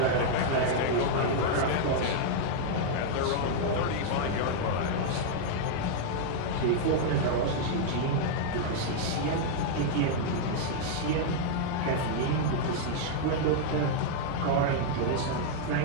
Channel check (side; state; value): both; different; correlation -0.01